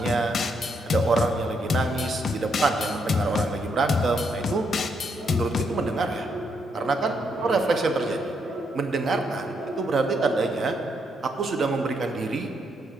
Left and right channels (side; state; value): both; normal; correlation 0.76